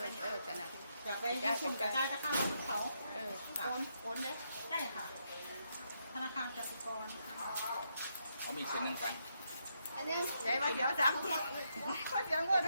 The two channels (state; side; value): inverted; both; correlation -0.79